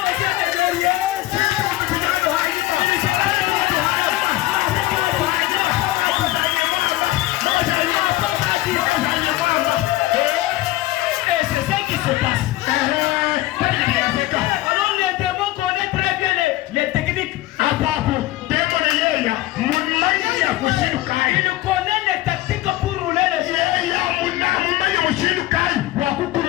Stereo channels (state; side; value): quieter; right; 16.9 dB